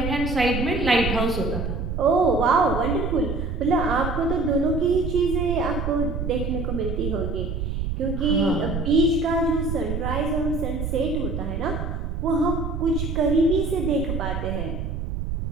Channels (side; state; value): right; noise; rumble, 3 dB below the sound